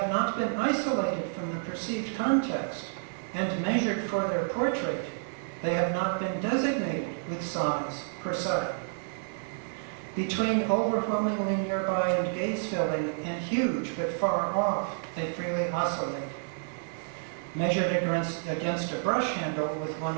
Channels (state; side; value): silent; left; 58 dB below the other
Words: not been isolated from the perceived context and measured for their portrait, they have not been designated with size per se. Between overwhelmingly nearby and gaze-filling and huge but far off, they freely oscillate. Measured against a brush handle with